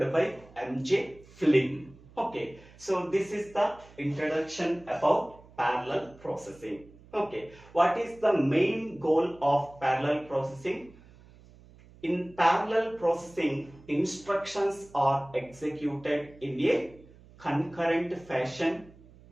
by MJ Flynn. Okay, so this is the introduction about parallel processing. Okay, what is the main goal of parallel processing? In parallel processing, instructions are executed in a concurrent fashion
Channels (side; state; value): right; noise; hum, 24 dB below the sound